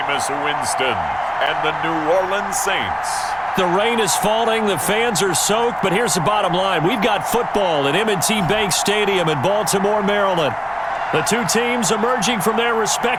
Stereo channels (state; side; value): identical; both; correlation 1.00